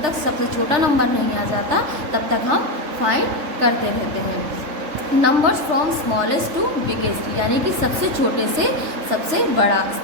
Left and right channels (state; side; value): late; left; 3.3 ms